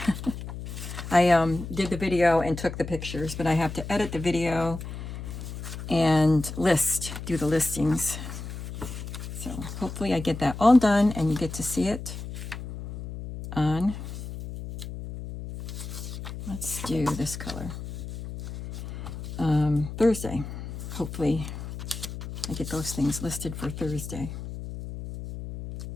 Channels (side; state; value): left; noise; hum, 9 dB below the sound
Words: I did the video and took the pictures, but I have to edit the video and do the listings. So hopefully I get that all done and you get to see it on, let's do this color, Thursday. Hopefully I get those things listed for Thursday.